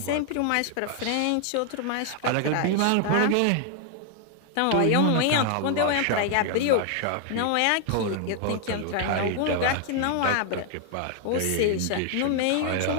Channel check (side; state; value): both; different; correlation 0.00